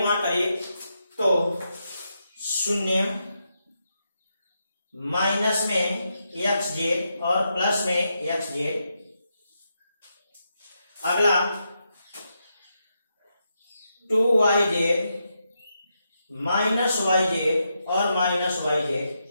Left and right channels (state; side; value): inverted; both; correlation -0.84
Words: गुणा करिए, तो 0 माइनस में एक्स जेड और प्लस में एक्स जेड। अगला 2yz माइनस वाई जेड और माइनस वाई जेड।